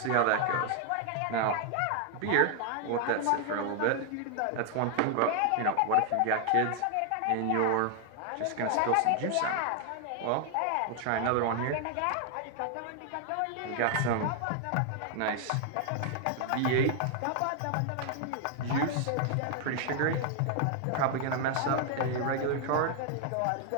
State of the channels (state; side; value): different; both; correlation 0.00